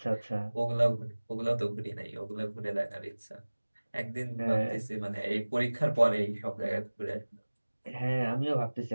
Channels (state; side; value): inverted; both; correlation -1.00